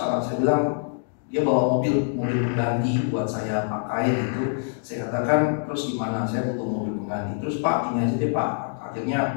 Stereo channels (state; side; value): silent; right; digital silence